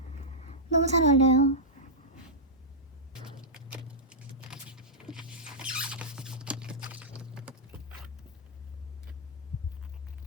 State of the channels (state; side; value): normal; both; correlation -0.12